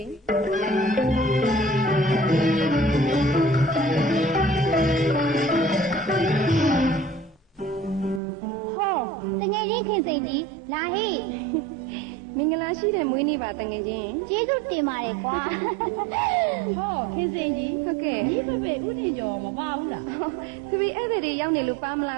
တငယ်ချင်းခင်စိန်ကြီးလာဟိမင်္ဂလာရှိတဲ့မွေးနေ့ပါတငယ်ချင်းကျေးဇူးတင်ပါတယ်ကွာဟောခင်စိန်ကြီးဟုတ်ကဲ့ဒီဖေဥတင်ကျော်မပါဘူးလားဖေဧည့်သည်တွေရောက်နေလို့ပါမလာ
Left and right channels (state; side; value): drops out; left; at 8.2 s